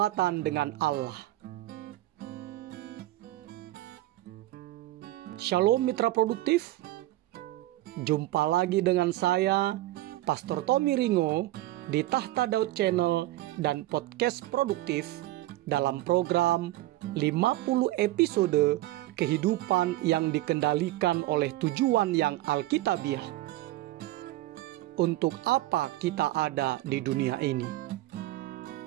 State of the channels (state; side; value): quieter; left; 16.7 dB